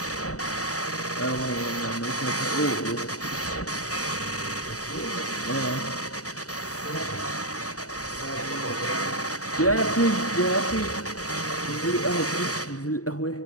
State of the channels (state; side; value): late; right; 0.66 ms